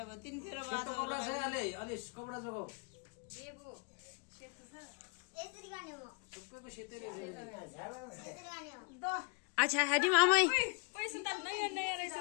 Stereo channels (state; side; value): quieter; right; 31.6 dB